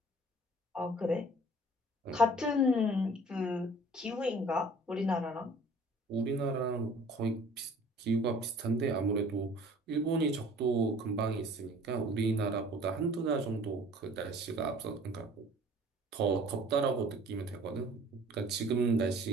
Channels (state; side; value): normal; both; correlation 0.50